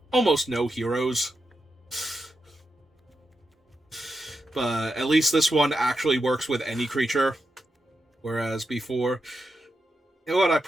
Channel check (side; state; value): both; normal; correlation 0.86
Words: almost no heroes. But at least this one actually works with any creature. Whereas before, you know what, I